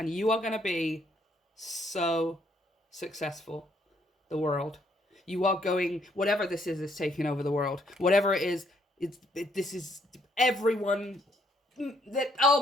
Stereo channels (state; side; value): normal; both; correlation 0.70